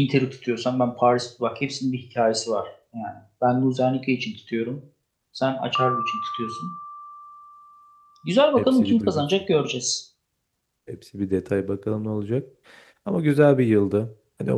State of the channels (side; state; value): both; identical; correlation 1.00